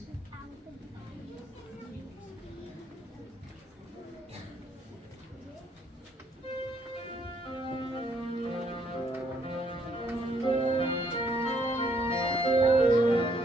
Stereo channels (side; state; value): both; normal; correlation 0.69